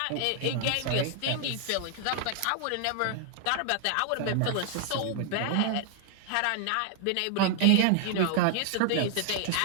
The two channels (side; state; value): both; different; correlation 0.00